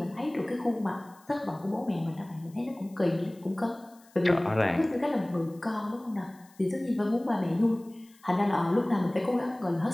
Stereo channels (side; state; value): left; noise; hiss, 28 dB below the sound